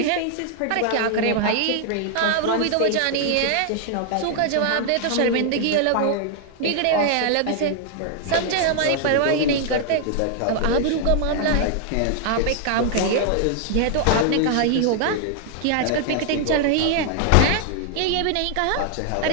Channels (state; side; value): different; both; correlation 0.00